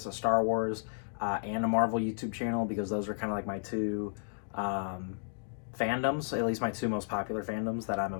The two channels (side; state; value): right; silent; digital silence